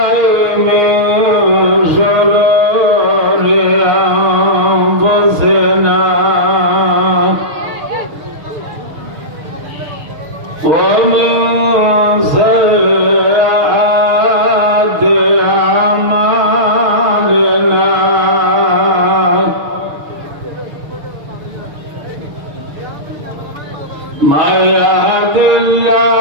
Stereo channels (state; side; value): late; left; 6.7 ms